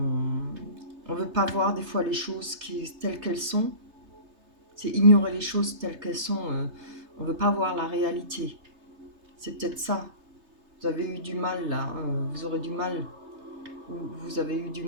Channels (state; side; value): late; left; 3.3 ms